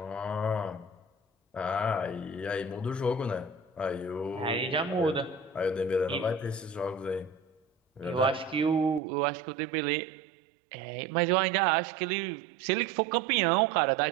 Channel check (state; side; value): drops out; left; at 9.0 s